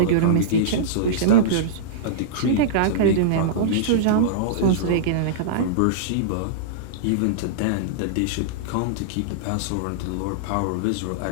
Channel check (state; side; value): different; both; correlation -0.03